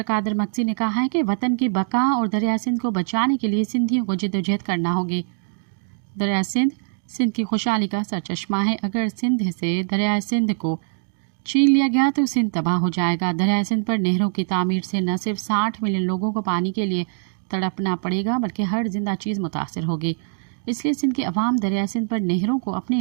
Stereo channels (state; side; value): silent; left; digital silence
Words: कादर मक्सी ने कहा है कि वतन की बका और दरिया सिंध को बचाने के लिए सिंधियों को जिद्दोजहद करना होगी। दरिया सिंध की खुशहाली का सरचश्मा है। अगर सिंध से दरिया सिंध को छीन लिया गया तो सिंध तबाह हो जाएगा। दरिया सिंध पर नहरों की तामीर से न सिर्फ 60 मिलियन लोगों को पानी के लिए तड़पना पड़ेगा बल्कि हर जिंदा चीज़ मुतासर होगी। इसलिए सिंध के अवाम दरिया सिंध पर नहरों को अपने